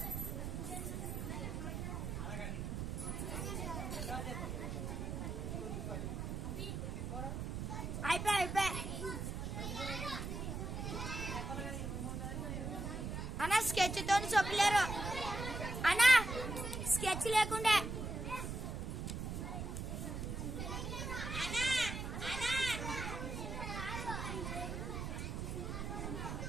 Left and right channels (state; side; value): noise; right; rumble, 4 dB below the sound